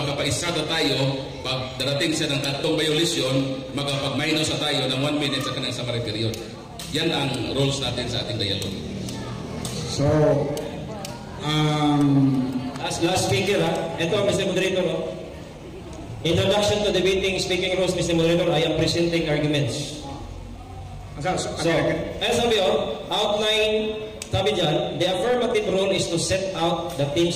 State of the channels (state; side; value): identical; both; correlation 1.00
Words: na tayo. Pag darating siya ng 3 violation, makapag-minus na tayo ng 1 minute sa kanyang summary period. Yan ang rules natin sa ating dialogue. So, Last speaker, ito, Mr. Moderator. Introduction to debating speaking rules, Mr. Moderator. I am presenting arguments. So, sabi outline, sabi dyan, the affirmative rule is to set out the